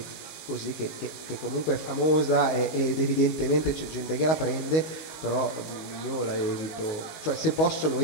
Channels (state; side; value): late; right; 19 ms